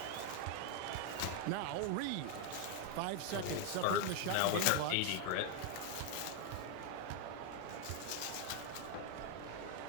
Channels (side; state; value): both; different; correlation 0.00